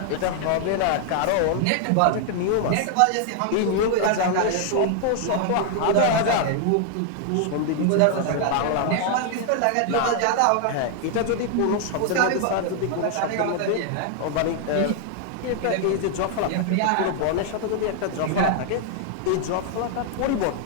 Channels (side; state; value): both; different; correlation 0.00